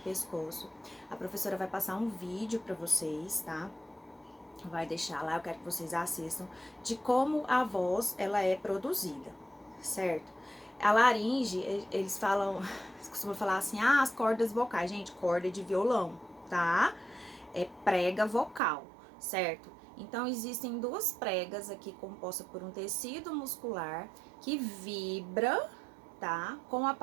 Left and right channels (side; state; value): left; drops out; at 18.6 s